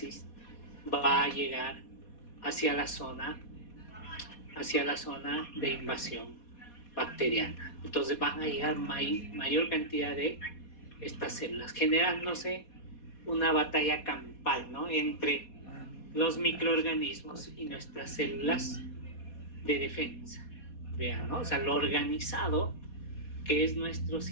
va a llegar hacia la zona de invasión bacteriana. Entonces van a llegar mayor cantidad de estas células, generándose una batalla campal, ¿no? Entre los microorganismos y nuestras células de defensa. Vean, ¿no? O sea, lo organizado que es nuestro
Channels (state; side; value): late; right; 4.2 ms